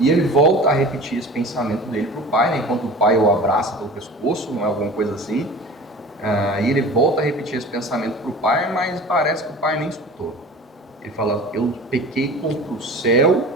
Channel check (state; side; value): normal; both; correlation 0.39